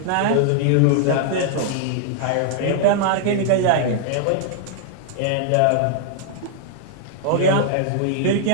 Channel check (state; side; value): different; both; correlation -0.01